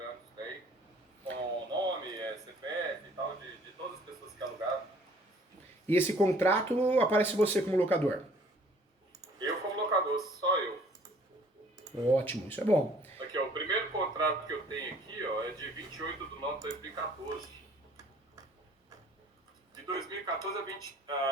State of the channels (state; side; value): normal; both; correlation 0.56